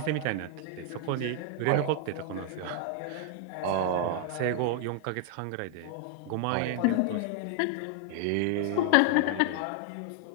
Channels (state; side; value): different; both; correlation 0.00